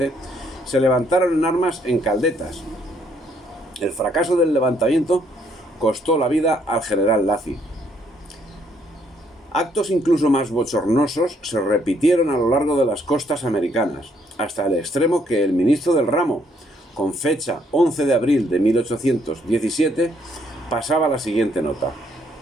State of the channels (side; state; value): both; normal; correlation 0.69